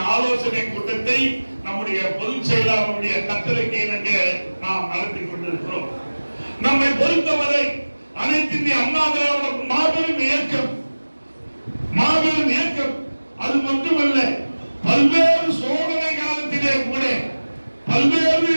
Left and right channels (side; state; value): both; inverted; correlation -1.00